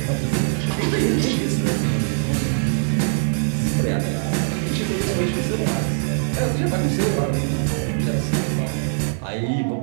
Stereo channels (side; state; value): left; silent; digital silence